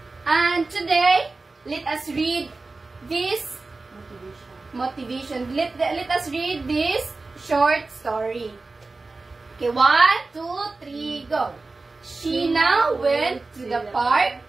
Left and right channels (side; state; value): left; quieter; 3.6 dB